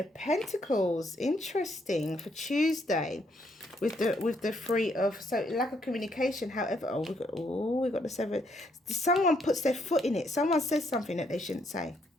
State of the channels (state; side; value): normal; both; correlation 0.73